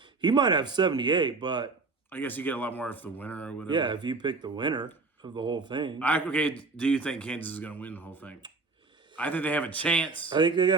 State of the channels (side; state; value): left; quieter; 3.9 dB